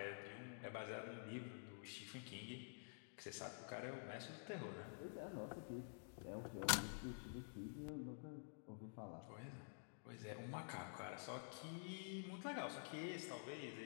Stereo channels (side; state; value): right; silent; digital silence